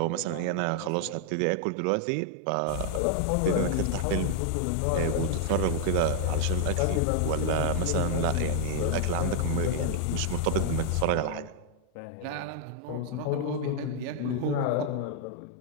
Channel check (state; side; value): different; both; correlation 0.00